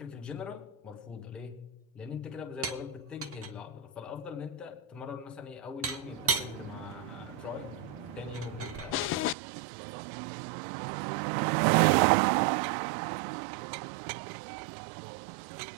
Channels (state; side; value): drops out; left; at 9.3 s